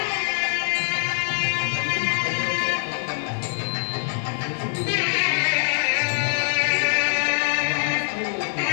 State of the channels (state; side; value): silent; right; 63 dB below the other